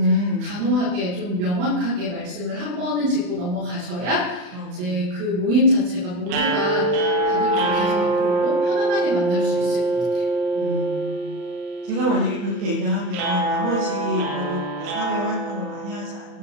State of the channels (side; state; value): left; late; 40 ms